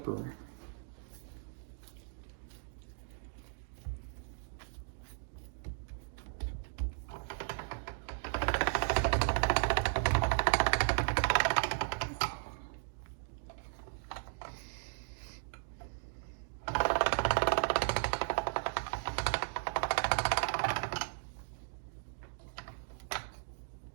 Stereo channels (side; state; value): left; silent; digital silence